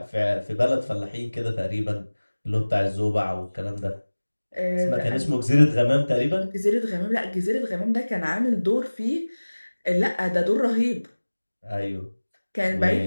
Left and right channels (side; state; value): both; inverted; correlation -1.00